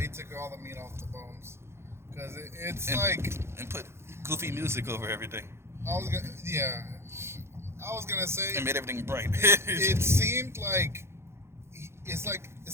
took all the meat off the bones because it's and put goofy music over everything. I was gonna say and made everything bright. It seemed like it's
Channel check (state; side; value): late; left; 0.12 ms